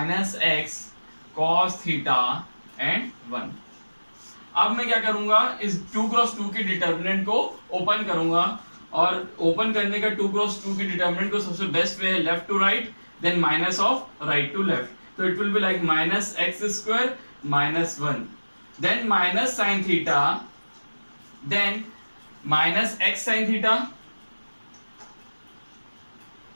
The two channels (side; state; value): both; inverted; correlation -1.00